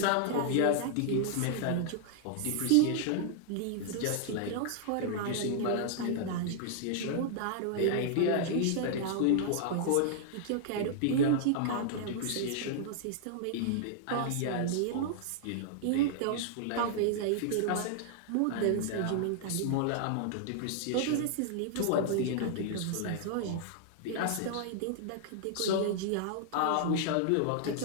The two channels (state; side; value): different; both; correlation -0.01